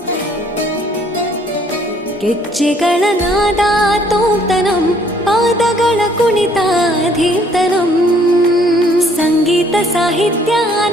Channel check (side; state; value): both; normal; correlation 0.62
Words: ಗೆಜ್ಜೆಗಳ ನಾದ ತೋಂತನಂ ಪಾದಗಳ ಕುಣಿತಾಧೀರ್ತನಂ ಸಂಗೀತ ಸಾಹಿತ್ಯ